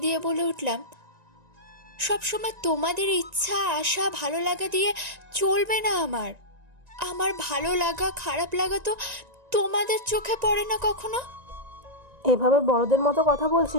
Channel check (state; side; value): late; left; 1.9 ms